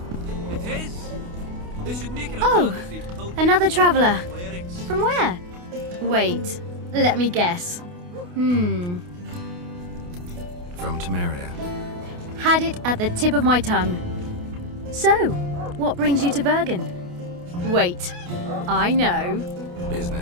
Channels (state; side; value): late; left; 28 ms